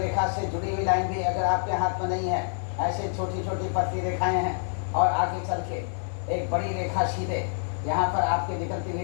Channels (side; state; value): right; silent; 60 dB below the other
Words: से जुड़ी हुई लाइन भी अगर आपके हाथ में नहीं है, ऐसे छोटी छोटी पतली रेखाएं हैं और आगे चल के एक बड़ी रेखा सीधे यहाँ पर आपके निकलती हुई